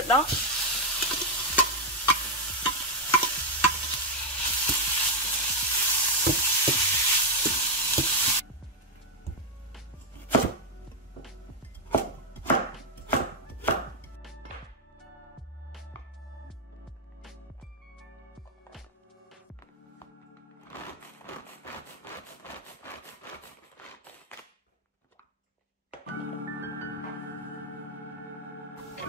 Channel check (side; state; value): both; normal; correlation 0.02